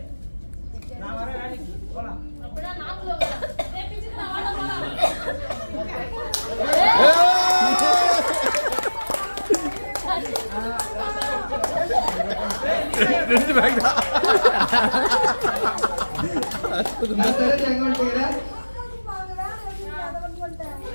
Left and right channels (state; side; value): inverted; both; correlation -1.00